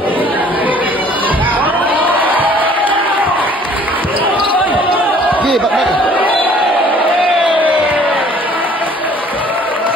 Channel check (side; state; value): both; normal; correlation 0.55